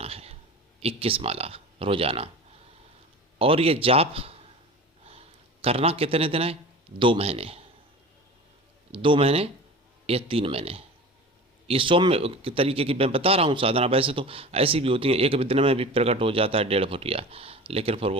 है, 21 माला रोज़ाना। और ये जाप करना कितने दिन है? 2 महीने, 2 महीने या 3 महीने। ये सौम्य तरीके की मैं बता रहा हूँ साधना। वैसे तो ऐसी भी होती है, एक दिन में भी प्रकट हो जाता है 1.5 फुटिया, लेकिन फिर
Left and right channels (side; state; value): both; normal; correlation 0.35